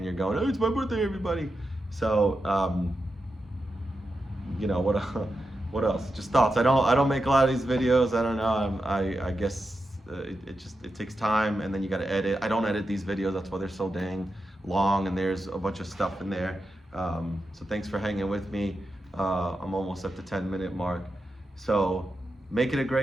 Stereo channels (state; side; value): normal; both; correlation 0.89